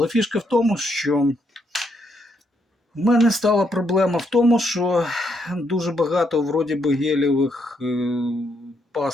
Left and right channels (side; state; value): both; normal; correlation 0.76